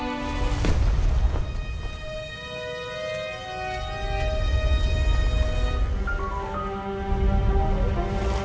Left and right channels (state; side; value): identical; both; correlation 1.00